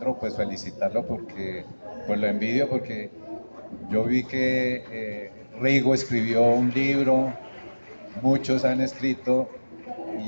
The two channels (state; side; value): inverted; both; correlation -1.00